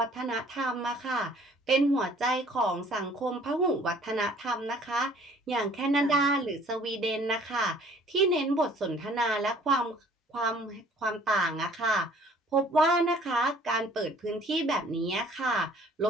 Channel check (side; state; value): both; normal; correlation 0.55